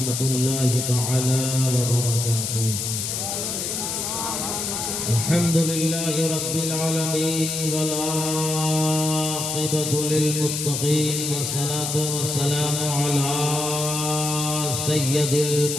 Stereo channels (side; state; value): left; noise; hiss, 2 dB below the sound